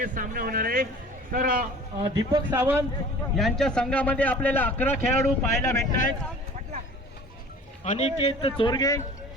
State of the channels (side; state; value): both; normal; correlation 0.45